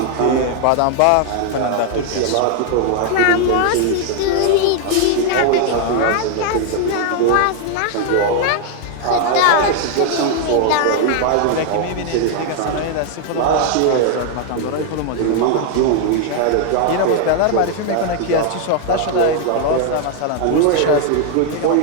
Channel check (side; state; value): both; different; correlation 0.00